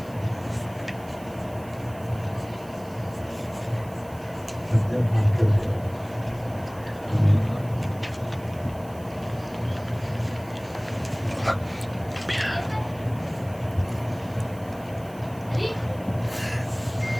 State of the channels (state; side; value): noise; right; hiss, 23 dB below the sound